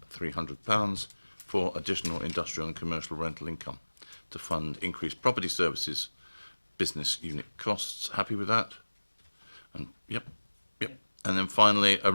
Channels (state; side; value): inverted; both; correlation -1.00